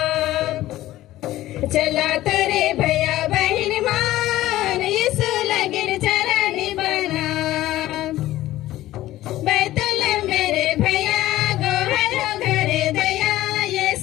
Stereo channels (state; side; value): quieter; right; 15.4 dB